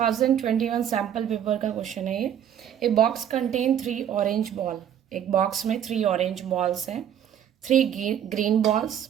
सैम्पल पेपर का क्वेश्चन है ये. A box contain 3 orange ball. एक बॉक्स में 3 ऑरेंज बॉल्स हैं, 3 green balls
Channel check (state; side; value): quieter; left; 9.6 dB